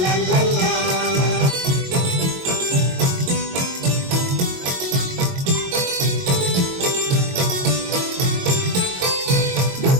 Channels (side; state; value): left; late; 22 ms